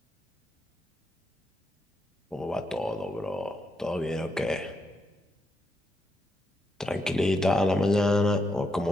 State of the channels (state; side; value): normal; both; correlation 0.81